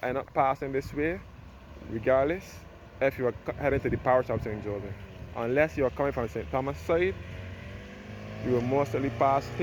end up passing this way, regardless, if you are heading to the parish of St. Joseph. Unless you are coming from St. Thomas side, you will mostly pass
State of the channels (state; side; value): identical; both; correlation 1.00